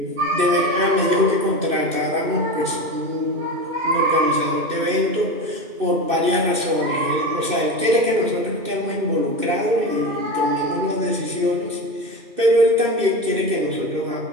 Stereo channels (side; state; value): left; late; 2.6 ms